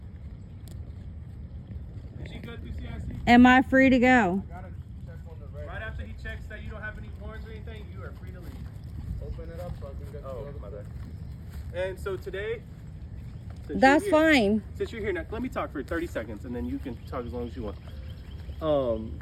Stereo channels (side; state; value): both; identical; correlation 1.00